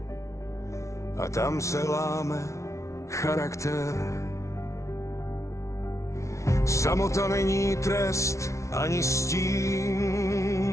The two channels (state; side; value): late; right; 0.14 ms